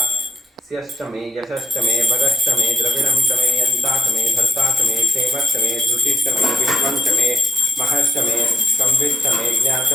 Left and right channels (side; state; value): both; normal; correlation 0.76